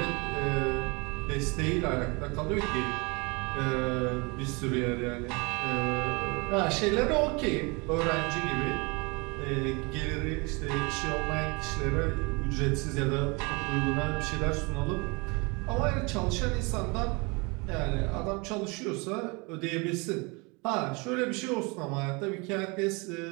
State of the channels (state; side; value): quieter; left; 28.7 dB